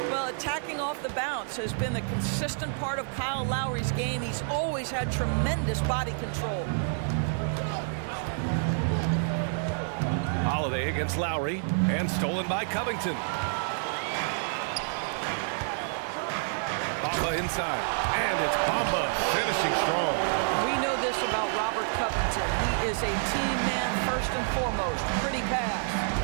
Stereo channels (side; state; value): left; silent; digital silence